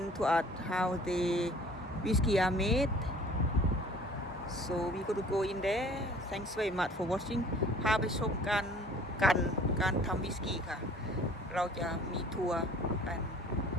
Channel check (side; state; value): both; normal; correlation 0.51